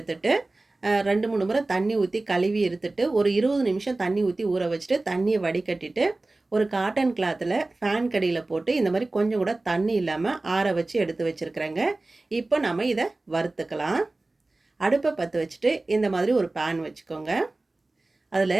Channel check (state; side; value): quieter; left; 3.0 dB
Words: 2-3 முறை தண்ணி ஊற்றி கழுவி எடுத்துட்டு ஒரு 20 நிமிஷம் தண்ணி ஊற்றி ஊற வச்சுட்டு தண்ணியை வடிகட்டிட்டு ஒரு காட்டன் கிளாத்தில் ஃபேன் கடியில் போட்டு இந்த மாதிரி கொஞ்சம் கூட தண்ணி இல்லாமல் ஆற வச்சு எடுத்து வச்சுருக்குறேங்க. இப்போ நம்ம இதை வறுத்துக்கலாம். அடுப்பை பற்ற வச்சுட்டு இந்த மாதிரி ஒரு பேன் வச்சுக்கோங்க.